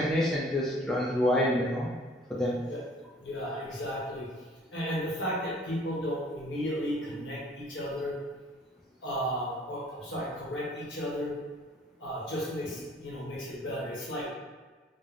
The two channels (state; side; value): normal; both; correlation 0.55